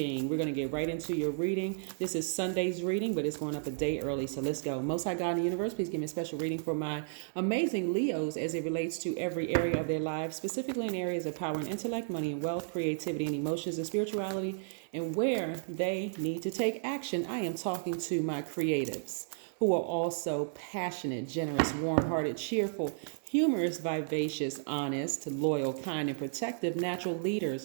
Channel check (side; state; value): left; silent; digital silence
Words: reading. This is Sunday's reading, but it's going up a day early, so let's go. Most High God in the universe, please give me a special reading for my amazing Leos as it relates to every area of their lives, specifically in areas of power and intellect, money and wealth, creativity and emotions and spirituality, and where they need to take action. I am talking to my creatives who are also passionate, generous, warm-hearted, cheerful, humorous, vivacious, honest, loyal, kind, and protective natural